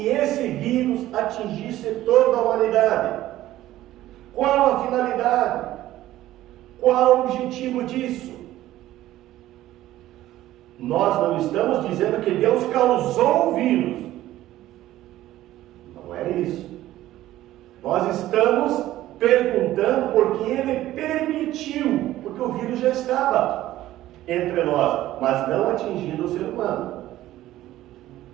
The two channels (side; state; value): left; quieter; 14.7 dB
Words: esse vírus atingisse toda a humanidade? Qual a finalidade? Qual o objetivo disso? Nós não estamos dizendo que Deus causou o vírus. Não é isso. Nós estamos perguntando porque Ele permitiu, porque o vírus já estava entre nós, mas não atingindo o ser humano.